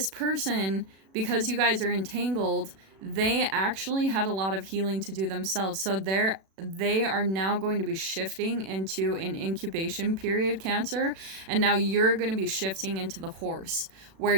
person, because you guys are entangled, they actually had a lot of healing to do themselves. So they are now going to be shifting into an incubation period, Cancer, and now you're going to be shifting into the horse, where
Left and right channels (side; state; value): left; late; 36 ms